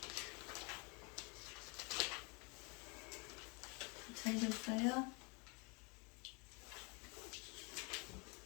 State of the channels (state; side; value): quieter; right; 31.1 dB